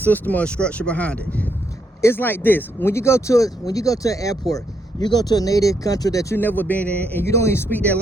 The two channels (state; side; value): normal; both; correlation 0.77